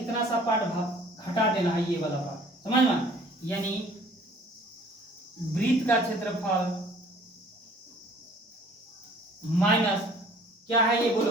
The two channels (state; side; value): normal; both; correlation 0.53